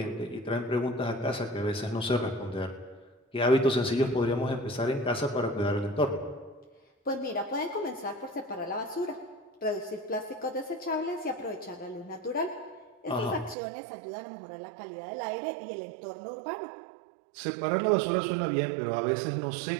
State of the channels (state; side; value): drops out; left; at 13.6 s